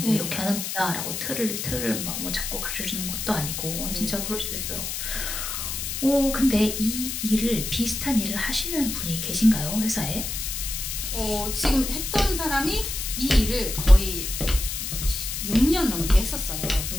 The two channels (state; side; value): noise; left; hiss, 4 dB below the sound